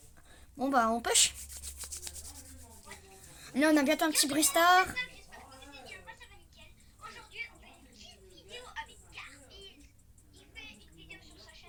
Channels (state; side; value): identical; both; correlation 1.00